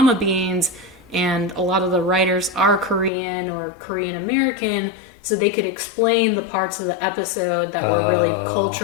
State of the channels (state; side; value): drops out; right; at 3.1 s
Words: Beans, and a lot of the writers are Korean or Korean American, so they could explain the parts of the episode that were really